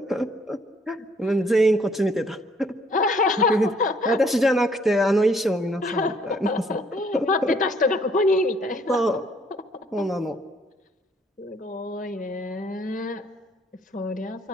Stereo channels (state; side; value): normal; both; correlation 0.64